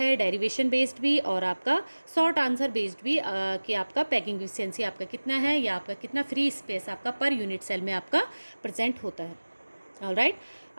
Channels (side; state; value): both; inverted; correlation -1.00